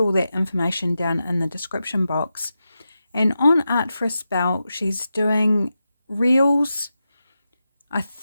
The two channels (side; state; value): both; inverted; correlation -0.90